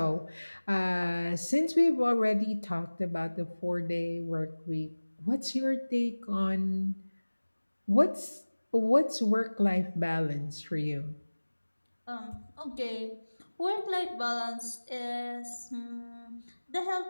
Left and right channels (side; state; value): both; inverted; correlation -1.00